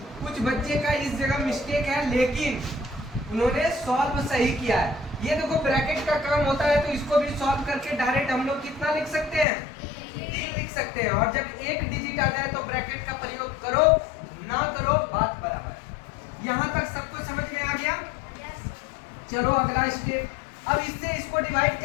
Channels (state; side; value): drops out; right; at 9.5 s